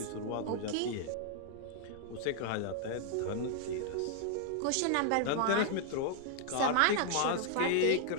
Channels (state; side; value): different; both; correlation 0.00